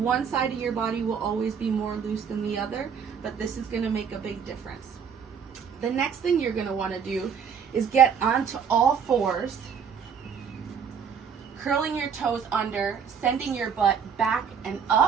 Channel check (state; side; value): quieter; left; 6.9 dB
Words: side of your body will always be more loose than the other, but this is going to make a big difference. The next thing you're going to want to do is get onto all fours, curling your toes under, sending your butt back and